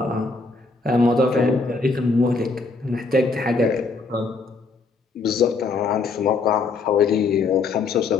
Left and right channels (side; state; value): right; quieter; 4.1 dB